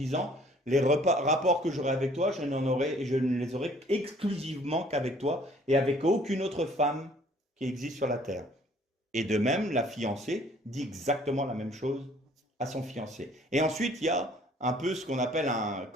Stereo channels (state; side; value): normal; both; correlation 0.57